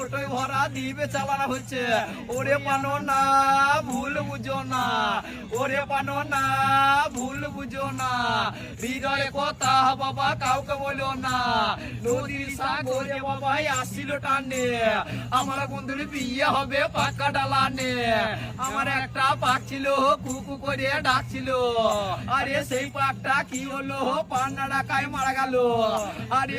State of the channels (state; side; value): identical; both; correlation 1.00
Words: ভরা দিবে চালানো হচ্ছে। ওরে পানো না ভুল বুঝো না, ওরে পানো না ভুল বুঝো না, হৃদয়ে কথা বাবা কাউকে বলো না। নদীর সাগরে বাবা আসছিল টানে, আমার বন্ধুর বিয়ে হবে পাকা ডালানে। আমার একটা পাক ছিল কুকু করে ডাকছিল, আরে সেই পাকটা কি হলো পান্না ডাকায় মারা গেল। আরে